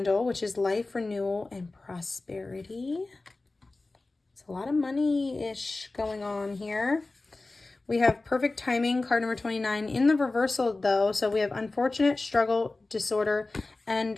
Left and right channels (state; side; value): quieter; right; 3.2 dB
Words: which is life, renewal, and prosperity. It's a lot of money-ish going on here. We have Perfect Timing, card number 29, in the reversal though. So we have Unfortunate, Struggle, Disorder,